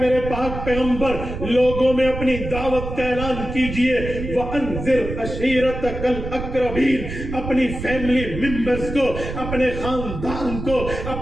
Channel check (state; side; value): noise; right; rumble, 7 dB below the sound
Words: میرے پاک پیغمبر لوگوں میں اپنی دعوت کا اعلان کیجئے، وَأَنذِرْ عَشِيرَتَكَ الْأَقْرَبِينَ، اپنی فیملی ممبرز کو، اپنے خاندان کو،